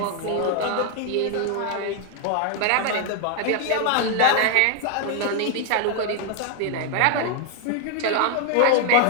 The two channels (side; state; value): both; different; correlation 0.00